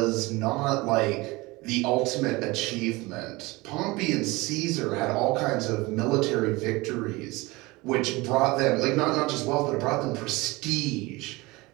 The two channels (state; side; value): quieter; left; 22.6 dB